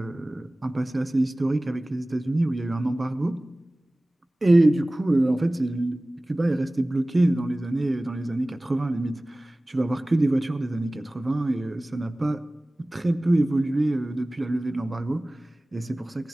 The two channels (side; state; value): both; normal; correlation 0.98